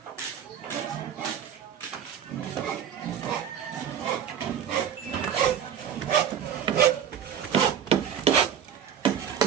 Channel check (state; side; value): quieter; left; 8.8 dB